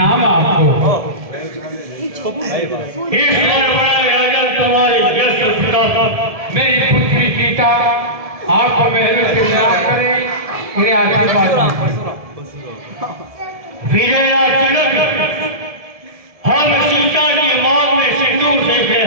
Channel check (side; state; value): left; late; 1.7 ms